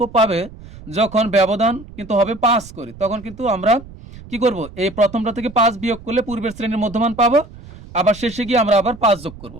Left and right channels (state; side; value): noise; right; rumble, 17 dB below the sound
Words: পাবে যখন ব্যবধান কিন্তু হবে 5 করে, তখন কিন্তু আমরা কি করব, এই প্রথমটা থেকে 5 বিয়োগ করলে পূর্বের শ্রেণীর মধ্যমান পাবো, আবার শেষে গিয়ে আমরা আবার 5 যোগ করব।